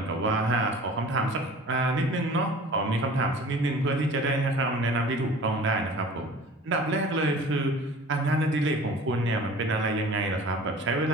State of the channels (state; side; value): normal; both; correlation 0.44